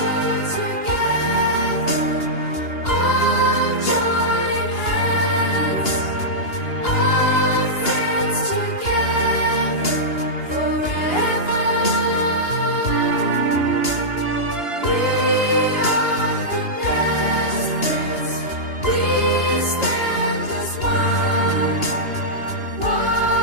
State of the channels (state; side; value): late; right; 2.9 ms